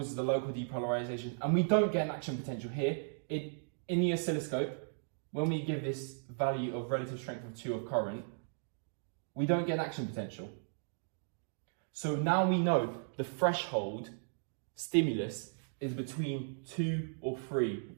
the local depolarization. And we don't get an action potential here. In the oscilloscope, when we give this value of relative strength of 2 of current, we don't get an action potential. So now we know the threshold stimulus is between 2 or 3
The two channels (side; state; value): left; silent; digital silence